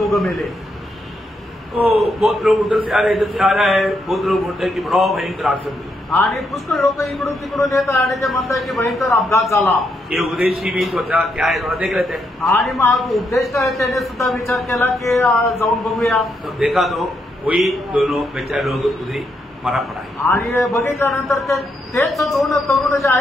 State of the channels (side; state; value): both; normal; correlation 0.79